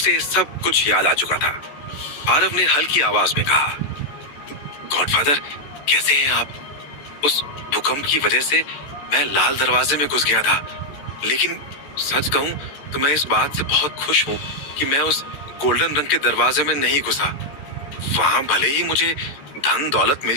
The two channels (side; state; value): right; late; 14 ms